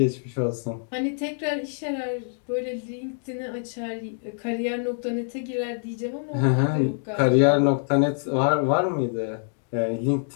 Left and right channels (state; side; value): silent; right; digital silence